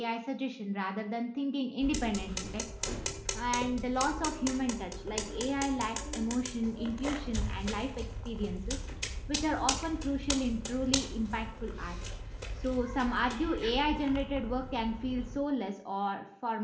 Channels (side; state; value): both; identical; correlation 1.00